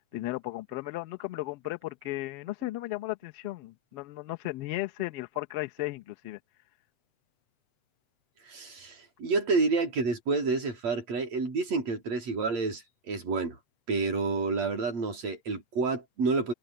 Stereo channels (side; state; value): left; late; 8.7 ms